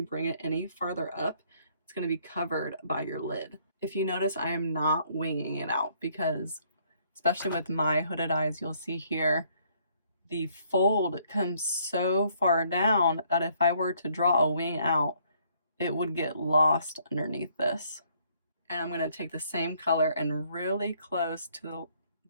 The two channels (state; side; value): inverted; both; correlation -0.66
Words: it any further up, it's going to be covered by your lid. If you notice, I am not winging it out because, especially with my hooded eyes, you'll see here, the fold comes so far down that if I were to draw a wing out, it would get lost underneath this. And I'm going to take the same color and really close to